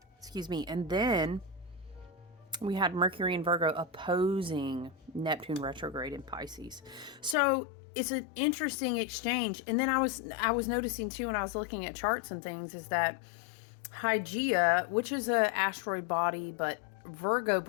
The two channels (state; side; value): drops out; right; at 7.4 s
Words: Excuse me. And then we had Mercury in Virgo opposing Neptune retrograde in Pisces. So it's an interesting exchange. And then I was noticing too, when I was looking at charts and things, is that Hygeia, which is an asteroid body, but Virgo